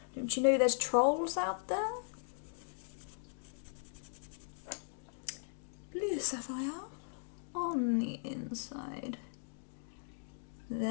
Don't you know there's trolls out there? Blue sapphire on the inside.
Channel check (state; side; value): silent; right; digital silence